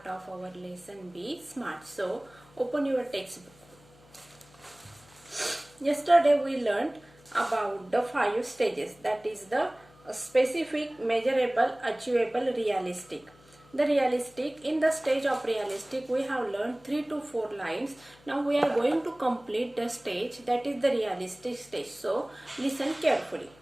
of our lesson B Smart. So open your textbook. Yesterday we learned about the 5 stages, that is the specific, measurable, achievable, realistic. The realistic, in the stage of realistic we have learned 3 to 4 lines. Now we are going to complete the stage, that is the realistic stage. So listen carefully.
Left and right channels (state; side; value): noise; left; hum, 27 dB below the sound